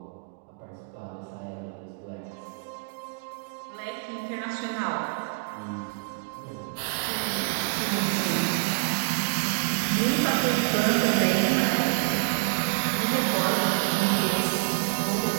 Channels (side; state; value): left; quieter; 32.2 dB